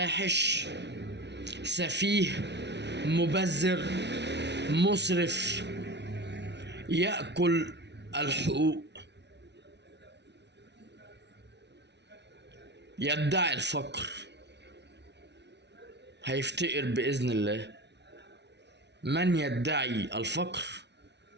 سفيه، مبذر، مسرف، يأكل الحقوق، يدعي الفقر، هيفتقر بإذن الله. من يدعي الفقر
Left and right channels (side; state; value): left; late; 0.50 ms